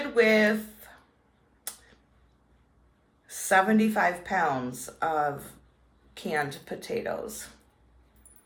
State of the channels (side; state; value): both; identical; correlation 1.00